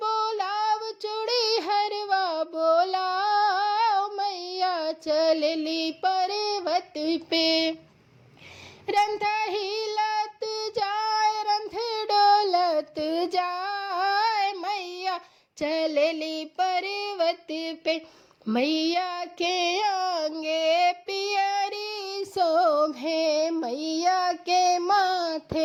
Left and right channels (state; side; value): identical; both; correlation 1.00